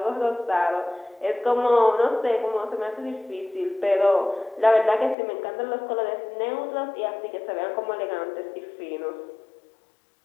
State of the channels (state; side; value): drops out; right; at 5.2 s